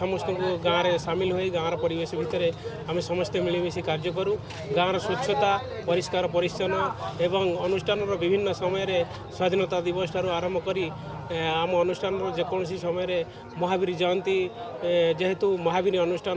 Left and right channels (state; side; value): identical; both; correlation 1.00